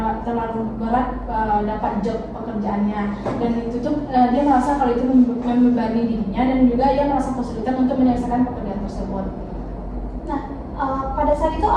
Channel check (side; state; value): both; identical; correlation 1.00